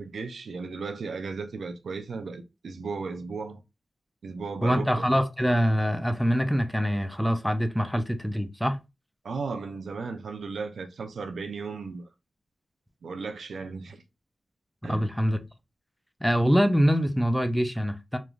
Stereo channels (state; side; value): normal; both; correlation 0.97